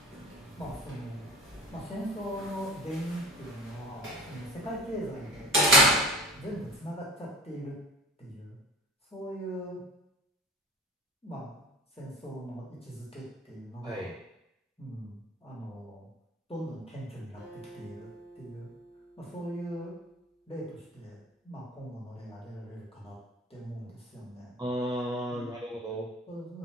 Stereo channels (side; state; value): both; normal; correlation 0.38